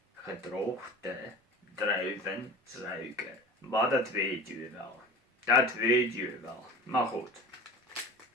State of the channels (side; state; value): both; normal; correlation 0.36